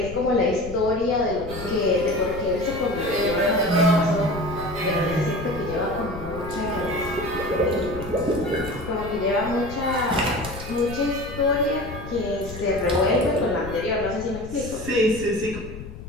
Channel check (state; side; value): noise; left; rumble, 12 dB below the sound